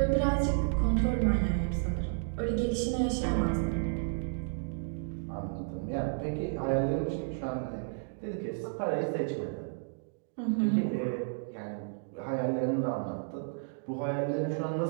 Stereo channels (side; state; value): left; silent; digital silence